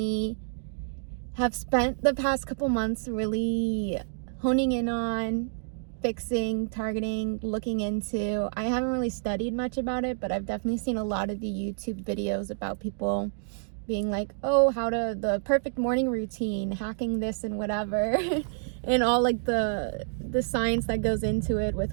have spent the past couple months really honing in on, fixing, targeting, looking into. I haven't really studied much about it, but I've definitely seen a lot of the YouTube videos about people being like, oh, how to the perfect morning routine, hacking this and whatever, and all like the science that goes into it with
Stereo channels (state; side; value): silent; left; digital silence